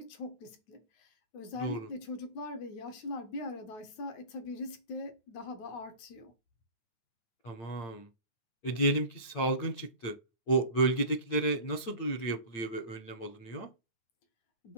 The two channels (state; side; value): late; right; 8.8 ms